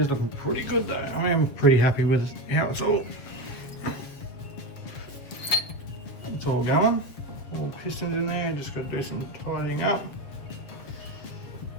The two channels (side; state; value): right; late; 7.6 ms